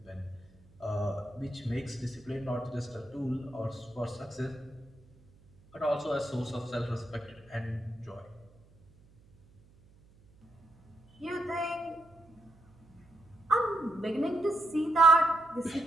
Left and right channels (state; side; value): noise; right; hum, 28 dB below the sound